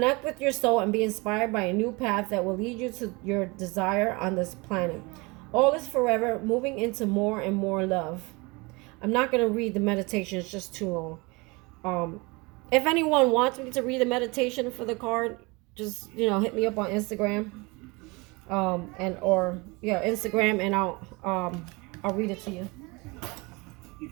with your soul and be inspired by a new path that will lead you to your desire on this planet. All is forever, moving into more and more love. I'm not going to read the meditation. It's just too long. If anyone wants me to read the meditation for the card, just, hit me up on Instagram. Instagram, and I'll read it to you.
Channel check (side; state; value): left; quieter; 26.2 dB